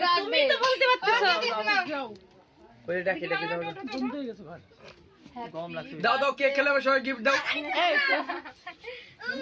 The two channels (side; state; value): both; identical; correlation 1.00